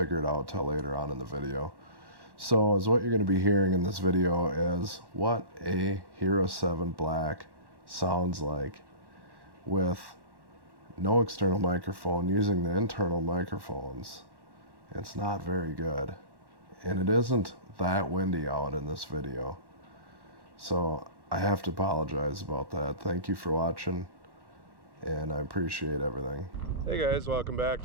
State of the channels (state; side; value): late; left; 1.1 ms